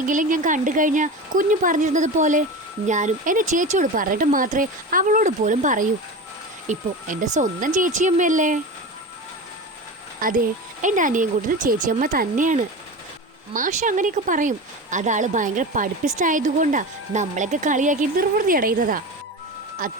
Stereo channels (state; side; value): normal; both; correlation 0.27